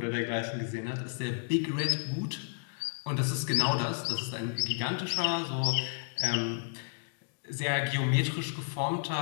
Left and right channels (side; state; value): right; silent; digital silence